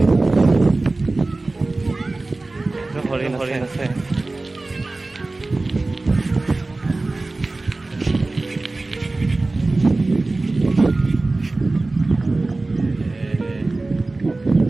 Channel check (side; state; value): left; quieter; 3.2 dB